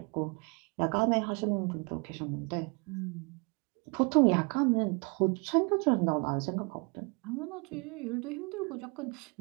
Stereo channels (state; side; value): quieter; left; 32.4 dB